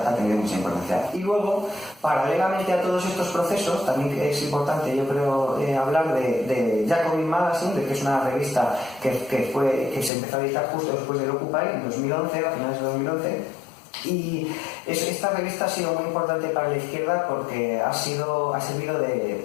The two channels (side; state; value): right; drops out; at 10.1 s